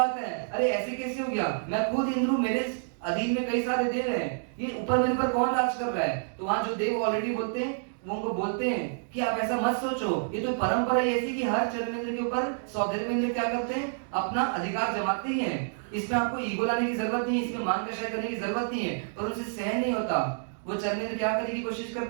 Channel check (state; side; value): silent; left; digital silence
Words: है, अरे ऐसे कैसे हो गया? मैं खुद इंद्र हूं, मेरे अधीन में कई सारे देव हैं, ये ऊपर मेरे पर कौन राज कर रहा है? तो वहां जो देव ऑलरेडी बोलते हैं वो उनको बोलते हैं कि आप ऐसा मत सोचो, ये तो परंपरा ही ऐसी कि हर चर्मेंद्र के ऊपर सौधर्मेंद्र क्या करते हैं, अपना अधिकार जमाते ही हैं। इसमें आपको ईगो लाने की जरूरत नहीं है, इसमें मान कषाय करने की जरूरत नहीं है, पर उनसे सहन नहीं होता। वो चर्मेंद्र क्या करने की कोशिश